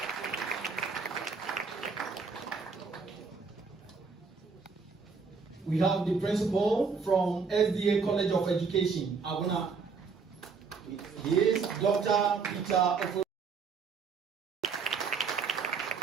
We have the Principal from SDA College of Education, Abuna. He is Dr. Peter Ofo.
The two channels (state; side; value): quieter; left; 5.1 dB